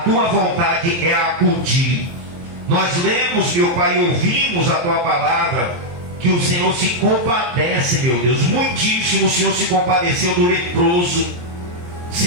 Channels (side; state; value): left; late; 23 ms